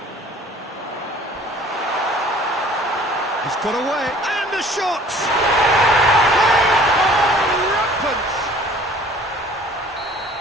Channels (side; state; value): both; normal; correlation 0.51